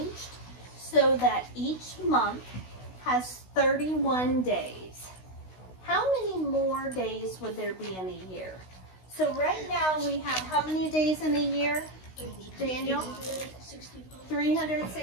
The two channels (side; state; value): right; late; 16 ms